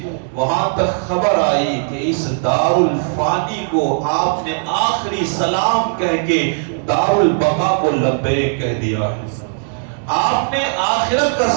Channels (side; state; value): left; silent; digital silence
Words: وہاں تک خبر آئی کہ اس دار الفانی کو آپ نے آخری سلام کہہ کے دار البقا کو لبیک کہہ دیا ہے۔ آپ نے آخرت کا